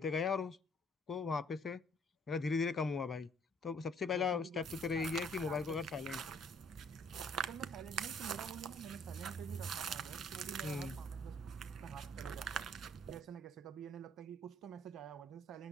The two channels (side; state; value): both; normal; correlation 0.62